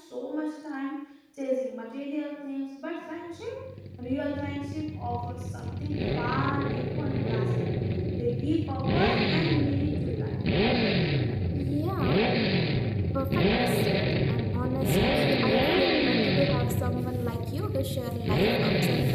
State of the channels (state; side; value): identical; both; correlation 1.00